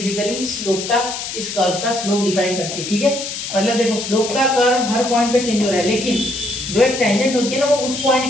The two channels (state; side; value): noise; left; hiss, 6 dB below the sound